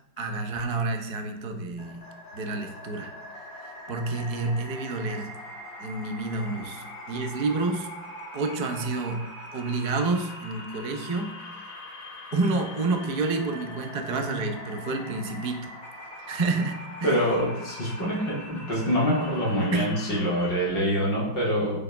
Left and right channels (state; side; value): late; right; 4.7 ms